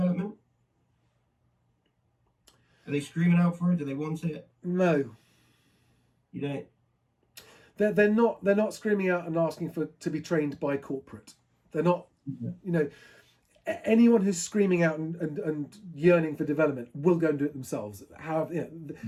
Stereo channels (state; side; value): identical; both; correlation 1.00